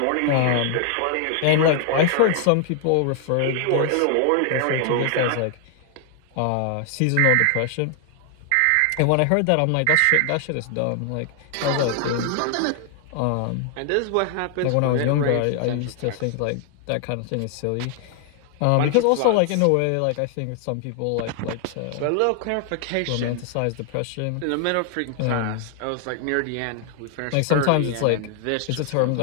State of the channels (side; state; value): both; different; correlation 0.00